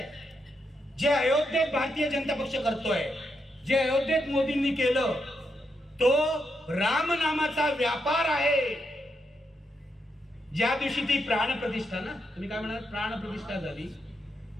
जे अयोध्येत भारतीय जनता पक्ष करतोय, जे अयोध्येत मोदींनी केलं, तो राम नामाचा व्यापार आहे. ज्या दिवशी ती प्राणप्रतिष्ठा ना, तुम्ही काय म्हणाल, प्राणप्रतिष्ठा झाली,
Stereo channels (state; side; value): normal; both; correlation 0.81